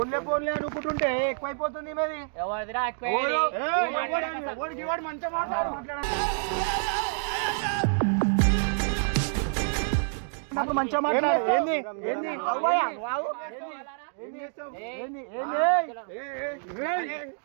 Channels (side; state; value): left; silent; digital silence